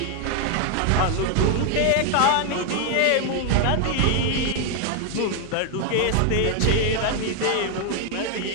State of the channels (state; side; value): different; both; correlation 0.00